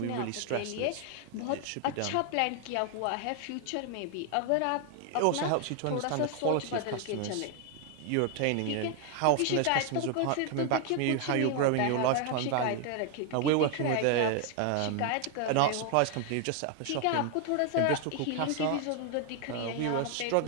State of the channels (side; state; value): both; different; correlation 0.00